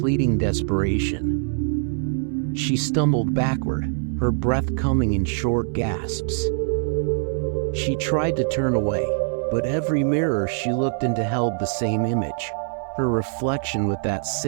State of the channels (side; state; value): left; silent; 63 dB below the other